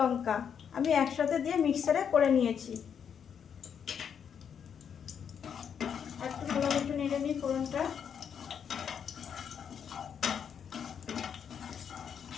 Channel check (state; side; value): quieter; right; 7.7 dB